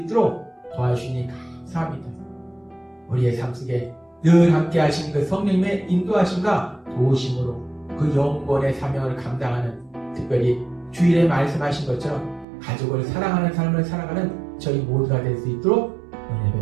도와주시니 감사합니다. 우리의 삶 속에 늘 함께 하시는 그 성령님의 인도하심과 도우심으로 그 영권의 사명을 감당하는, 특별히 주일에 말씀하신 것처럼 가족을 사랑하는 삶을 살아가는 저희 모두가 될 수 있도록 은혜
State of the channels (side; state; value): left; drops out; at 12.5 s